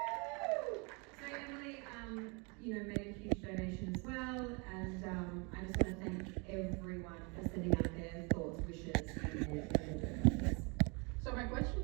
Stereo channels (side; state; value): left; quieter; 31.2 dB